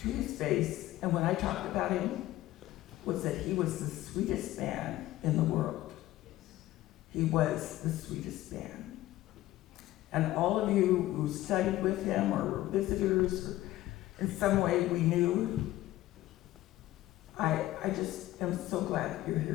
to his face, and when I talked about him, was that he was the sweetest man in the world. He was the sweetest man. And all of you who studied with him or were visitors, or in some way we knew, I just am so glad that you're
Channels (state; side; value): quieter; right; 15.7 dB